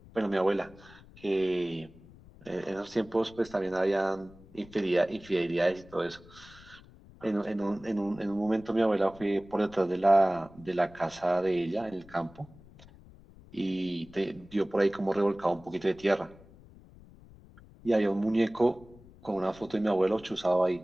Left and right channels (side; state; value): left; noise; rumble, 22 dB below the sound